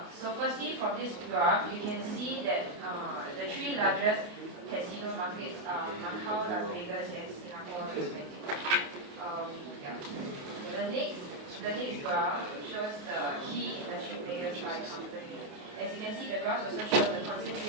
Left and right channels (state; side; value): late; left; 28 ms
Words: So firstly, from this graph, you can see that the three largest casino markets are Macau, Las Vegas, and Singapore respectively. The next the next graph shows the key industry players by company. As you can see, the graphs also show the